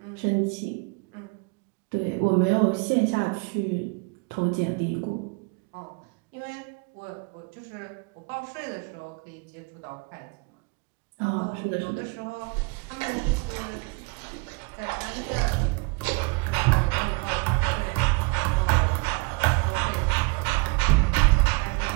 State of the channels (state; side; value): quieter; left; 29.7 dB